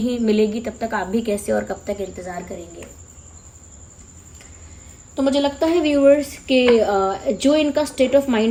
मिलेगी, तब तक आप भी कैसे और कब तक इंतज़ार करेंगे? तो मुझे लगता है व्यूअर्स कि जो इनका स्टेट ऑफ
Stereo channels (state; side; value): identical; both; correlation 1.00